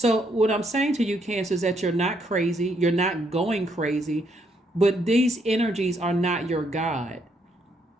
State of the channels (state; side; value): normal; both; correlation 0.73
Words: what I'm saying to you, Cancer, is that you're not crazy. You're not going crazy, but these energies are not your God.